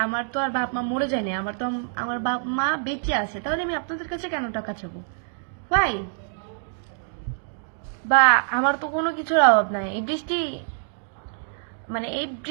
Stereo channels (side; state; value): left; silent; digital silence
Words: আমার তো আর বাপ মা মরে যায় না, আমার বাপ মা বেঁচে আছে, তাহলে আমি আপনাদের কাছে কেন টাকা চাবো ভাই? বা আমার তো কোনো কিছুর অভাব নাই। এই